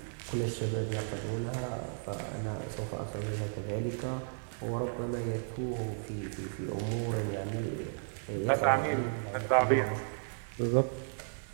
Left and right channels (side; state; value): left; silent; digital silence